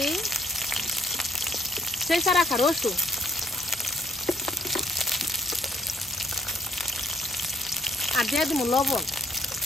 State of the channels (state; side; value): normal; both; correlation 0.65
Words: চেঁচা রাখা রসুন, আর দিয়ে দিব লবণ।